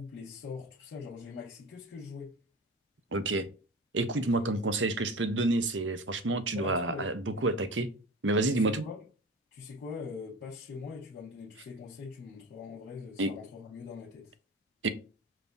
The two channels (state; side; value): normal; both; correlation 0.33